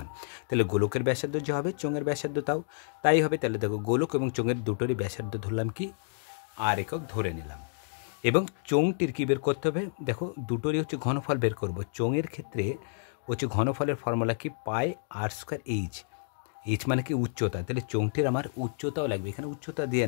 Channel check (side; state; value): right; silent; digital silence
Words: তাহলে গোলকের ব্যাসার্ধ যে হবে, চোঙের ব্যাসার্ধ তাই হবে। তাহলে দেখো, গোলক এবং চোঙের দুটোরই ব্যাসার্ধ ধরলাম কি? আর একক ধরে নিলাম। এবং চোঙটির কী বের করতে হবে? দেখো, দুটোরই হচ্ছে ঘনফল বের করব। চোঙের ক্ষেত্রে হচ্ছে ঘনফলের ফর্মুলা কি? পাই আর স্কোয়ার এইচ। এইচ মানে কি? উচ্চতা। তাহলে চোঙটির আমার উচ্চতাও লাগবে, এখানে উচ্চতা দিয়ে